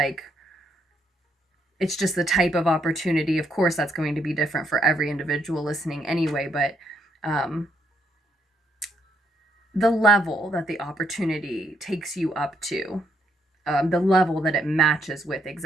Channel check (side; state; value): both; normal; correlation 0.73